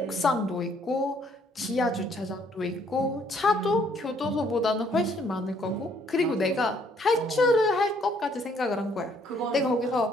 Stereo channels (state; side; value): normal; both; correlation 0.66